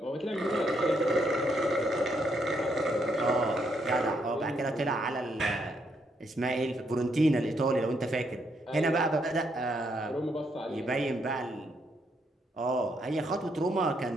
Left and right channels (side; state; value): both; normal; correlation 0.75